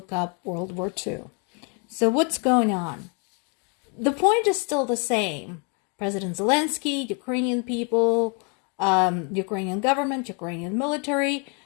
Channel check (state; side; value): quieter; right; 36.5 dB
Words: up World War II. So, what's going on? The point is still the same. President Zelensky, Ukrainian people, Ukrainian government, Ukrainian military,